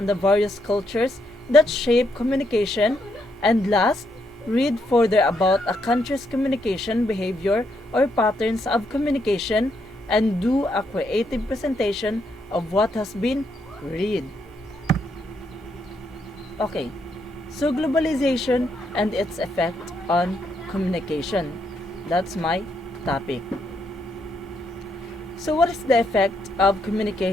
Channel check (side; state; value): both; normal; correlation 0.76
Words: the various cultures that shape communication. And last, read further about a country's communication behavior or patterns of communication and do a creative presentation of what has been read. Okay, so globalization and its effect on communication. That's my topic. So, what is the effect of